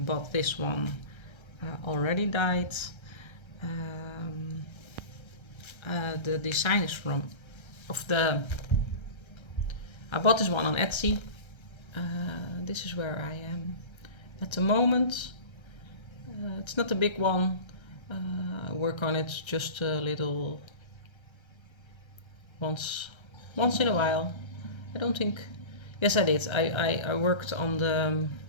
this one already dyed. The design is I bought this one on Etsy. This is where I am at the moment. It's not a big one. I work on it just a little once in a while. I don't think. Yes, I did. I worked on the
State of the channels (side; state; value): right; late; 1.3 ms